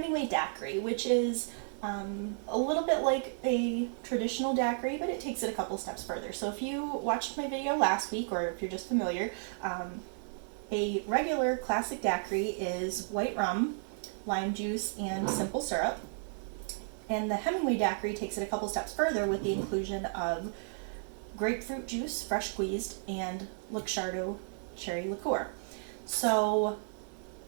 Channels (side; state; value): left; silent; 56 dB below the other